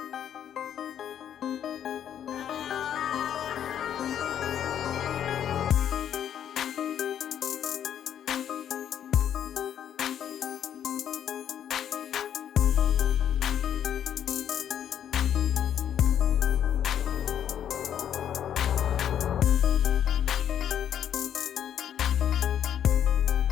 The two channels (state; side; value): quieter; right; 9.7 dB